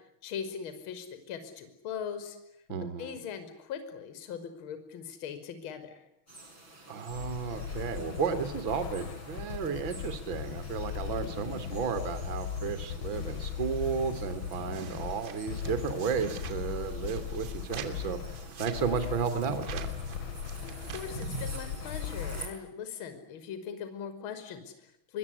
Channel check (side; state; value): right; late; 6.2 ms